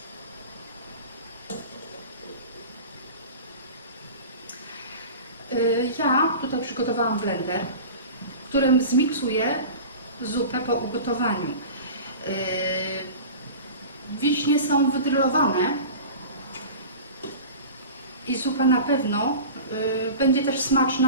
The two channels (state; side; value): inverted; both; correlation -0.35